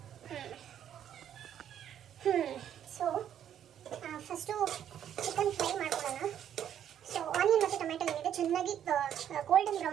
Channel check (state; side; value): quieter; left; 9.9 dB